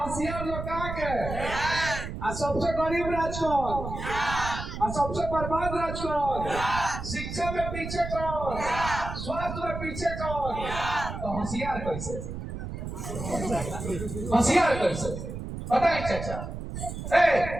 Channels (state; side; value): noise; right; rumble, 7 dB below the sound